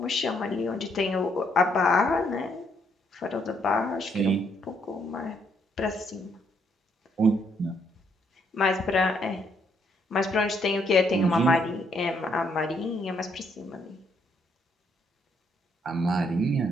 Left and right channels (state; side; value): normal; both; correlation 0.72